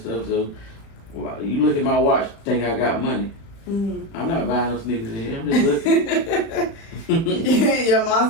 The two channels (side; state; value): right; late; 36 ms